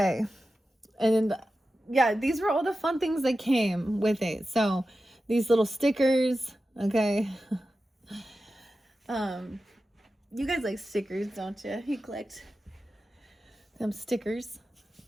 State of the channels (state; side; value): normal; both; correlation 0.93